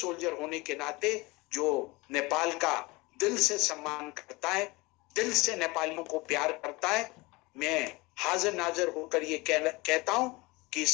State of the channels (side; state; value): right; quieter; 23.7 dB